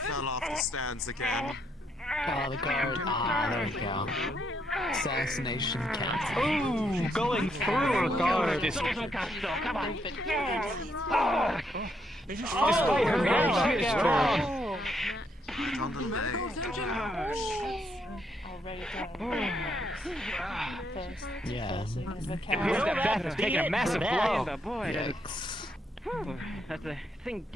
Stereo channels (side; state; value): both; normal; correlation 0.75